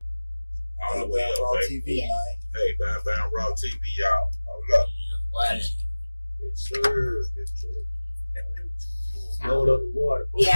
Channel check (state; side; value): inverted; both; correlation -1.00